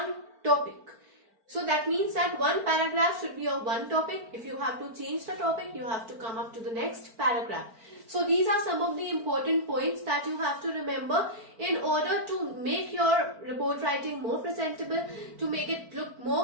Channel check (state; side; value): late; left; 4.4 ms